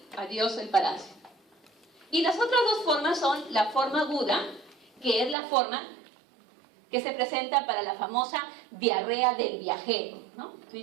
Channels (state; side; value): drops out; left; at 5.4 s